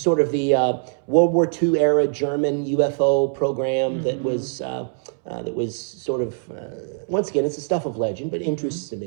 of the World War II era German UFO program that was sort of, once again, it's the stuff of legend, but interests to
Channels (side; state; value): left; silent; 64 dB below the other